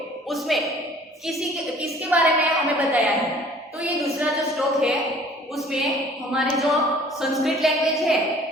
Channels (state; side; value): normal; both; correlation 0.52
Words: उसमें किसके बारे में हमें बताया है? तो ये दूसरा जो श्लोक है उसमें हमारे जो संस्कृत लैंग्वेज है